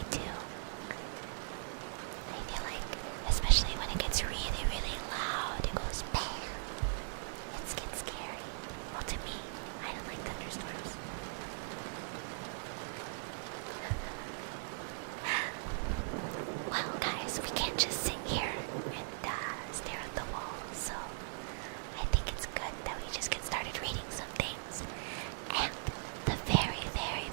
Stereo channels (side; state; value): left; silent; digital silence